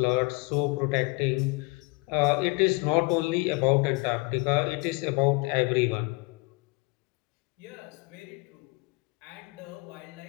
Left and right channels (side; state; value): right; quieter; 27.4 dB